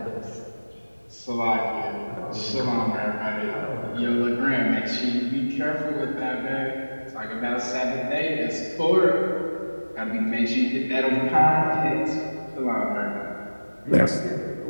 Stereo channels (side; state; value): both; inverted; correlation -1.00